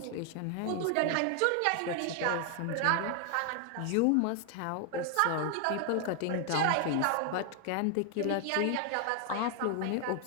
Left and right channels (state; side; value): different; both; correlation 0.00